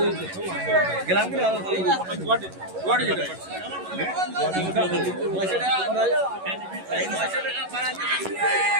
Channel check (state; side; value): late; left; 11 ms